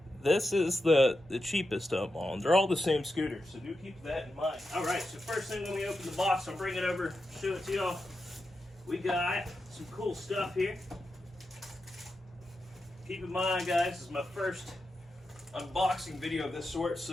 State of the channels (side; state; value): both; normal; correlation 0.88